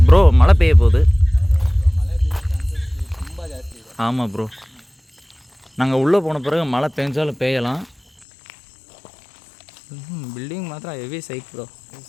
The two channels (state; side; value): drops out; right; at 8.2 s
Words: ப்ரோ மழை பெய்ய போகுது. ஆமாம் ப்ரோ, நாங்கள் உள்ளே போன பிறகு மழை பெஞ்சாலும் பெய்யலாம். பில்டிங் மாத்திரம் ஹெவி சைட் ப்ரோ. இது